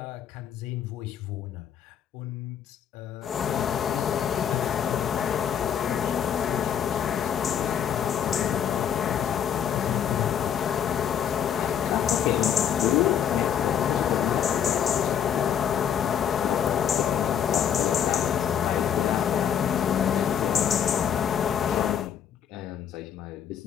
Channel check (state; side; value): quieter; right; 8.7 dB